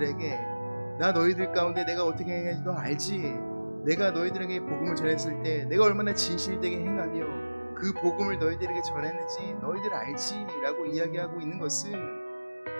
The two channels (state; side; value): inverted; both; correlation -1.00